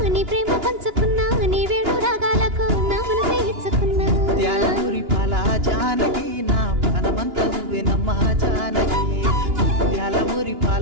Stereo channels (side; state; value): left; late; 2.9 ms